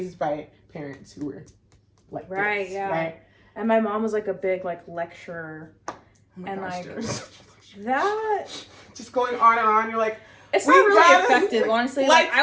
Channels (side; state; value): both; identical; correlation 1.00